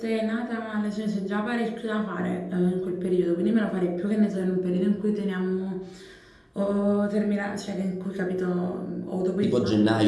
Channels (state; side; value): identical; both; correlation 1.00